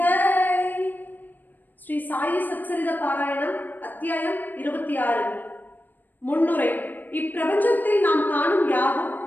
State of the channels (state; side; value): late; right; 0.089 ms